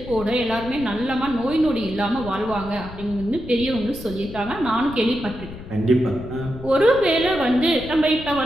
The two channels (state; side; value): noise; left; rumble, 13 dB below the sound